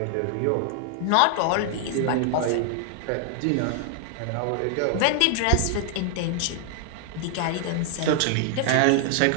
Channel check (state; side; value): different; both; correlation 0.00